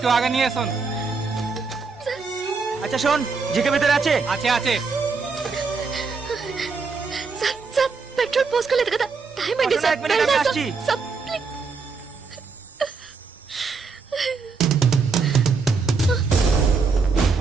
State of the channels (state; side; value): quieter; left; 4.7 dB